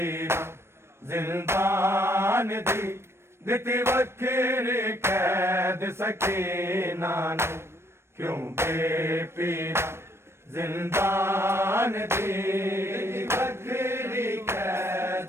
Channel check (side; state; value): left; late; 0.12 ms